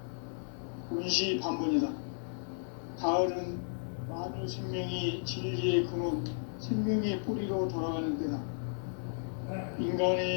운시반본이다. 가을은 만유 생명이 진리의 근원, 생명의 뿌리로 돌아가는 때다.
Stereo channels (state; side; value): silent; right; 55 dB below the other